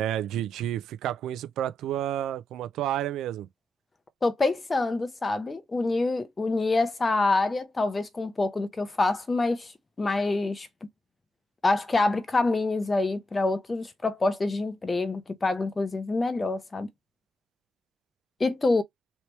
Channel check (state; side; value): normal; both; correlation 0.87